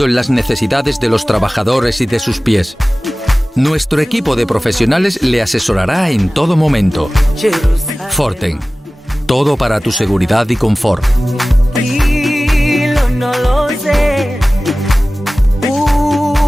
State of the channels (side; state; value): both; normal; correlation 0.97